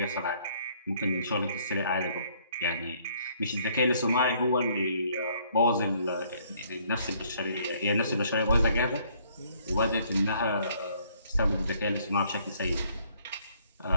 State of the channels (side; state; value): both; inverted; correlation -0.64